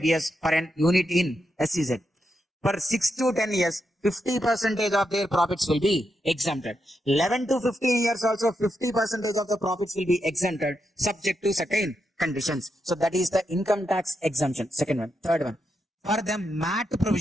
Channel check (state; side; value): normal; both; correlation 0.84